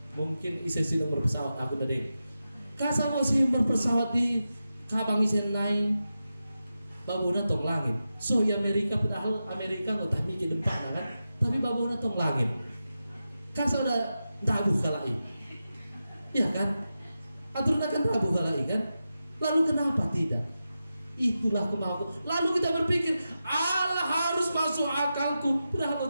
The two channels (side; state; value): both; inverted; correlation -0.91